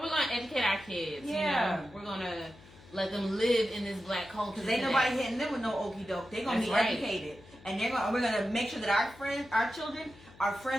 we're going to educate our kids. Yeah. We're going to let them live in this Black culture. Because ain't nobody hitting them with no okie doke. They're going to be educated. And we're going to make sure that our children are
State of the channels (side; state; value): left; noise; hum, 23 dB below the sound